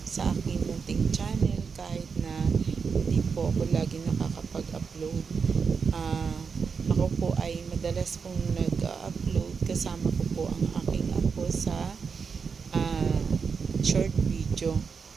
sa aking munting channel kahit na hindi po ako lagi nakakapag-upload. Ako po ay madalas pong nag-upload kasama ko po ang aking apo sa short video.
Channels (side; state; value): left; quieter; 5.6 dB